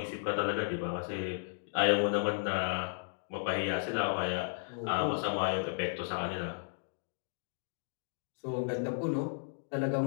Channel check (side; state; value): right; silent; digital silence